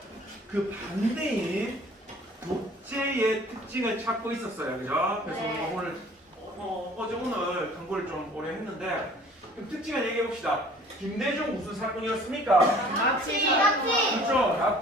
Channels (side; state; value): both; normal; correlation 0.51